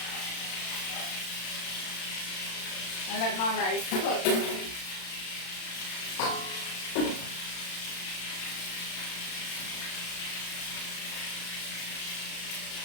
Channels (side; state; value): right; late; 35 ms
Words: And let my rice cook.